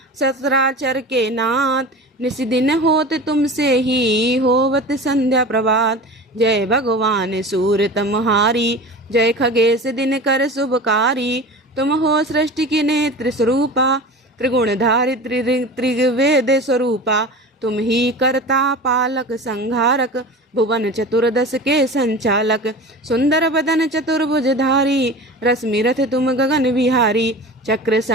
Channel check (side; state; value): both; normal; correlation 0.34